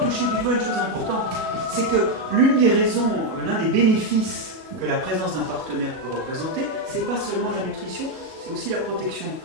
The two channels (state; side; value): late; left; 37 ms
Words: du doigt une chose importante, c'est que l'une des raisons, l'un des bénéfices que la présence d'un partenaire peut représenter, c'est pas seulement la nutrition, c'est aussi la protection.